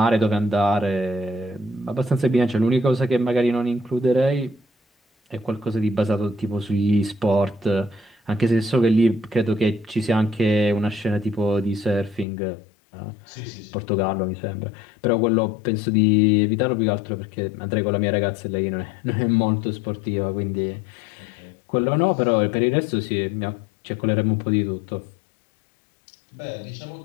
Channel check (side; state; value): right; drops out; at 12.2 s